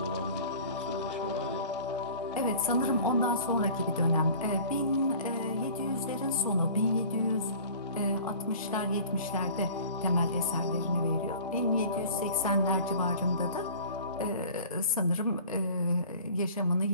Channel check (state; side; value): inverted; both; correlation -0.45